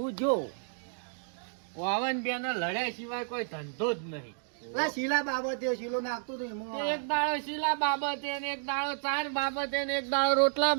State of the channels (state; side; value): silent; left; digital silence